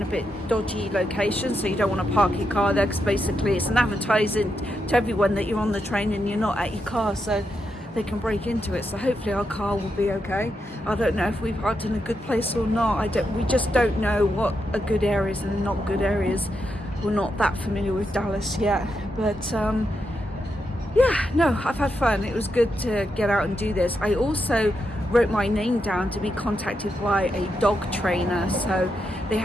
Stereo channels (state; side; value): normal; both; correlation 0.84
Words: a bit dodgy locations, so you don't want to park your car there, because basically it's an advertising to everyone that you're on the train and you're not at your car, so they can break into it. So hopefully our car will be okay. I don't know if we've parked in a good place or not. We just don't know what are good areas and not good areas. We're not that familiar with Dallas yet, but yeah, no, I've had fun. It was good to get out and do this. I also wrote my name down to be contacted by a dog trainer. So they